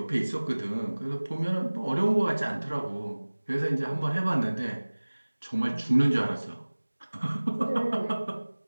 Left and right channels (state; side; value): inverted; both; correlation -1.00